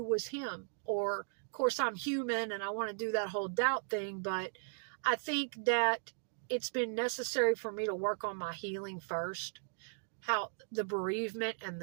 was him. Or, of course, I'm human and I want to do that whole doubt thing, but I think that it's been necessary for me to work on my healing first. How the bereavement and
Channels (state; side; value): silent; left; digital silence